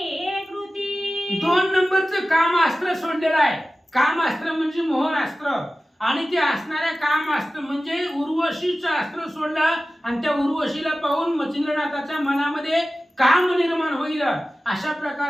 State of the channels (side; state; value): both; normal; correlation 0.95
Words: एक कृती. 2 नंबरचं कामास्त्र सोडलेलं आहे. कामास्त्र म्हणजे मोहनास्त्र, आणि ते असणाऱ्या कामास्त्र म्हणजे उर्वशीचं अस्त्र सोडलं, आणि त्या उर्वशीला पाहून मच्छिंद्रनाथाच्या मनामध्ये काम निर्माण होईल. अशा